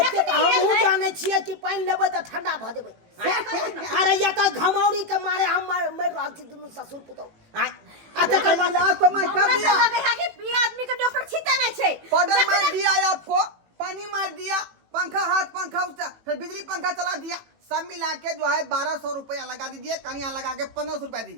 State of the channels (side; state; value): left; late; 18 ms